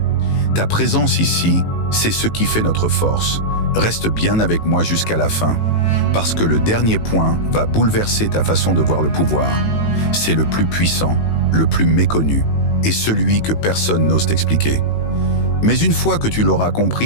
Ta présence ici, c'est ce qui fait notre force. Reste bien avec moi jusqu'à la fin, parce que le dernier point va bouleverser ta façon de voir le pouvoir. C'est le plus puissant, le plus méconnu, et celui que personne n'ose t'expliquer. Mais une fois que tu l'auras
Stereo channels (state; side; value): late; right; 18 ms